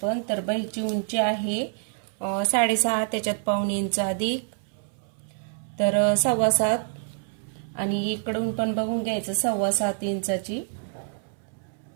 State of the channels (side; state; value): left; silent; 60 dB below the other